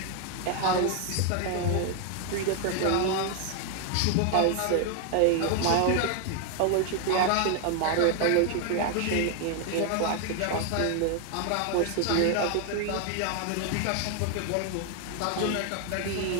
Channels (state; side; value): different; both; correlation 0.00